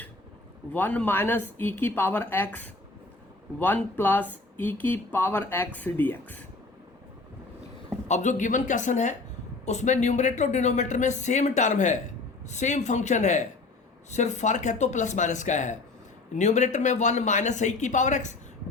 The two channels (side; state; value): right; quieter; 3.6 dB